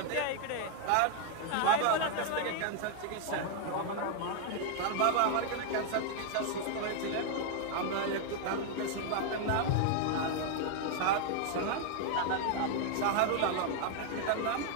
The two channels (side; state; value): both; different; correlation 0.00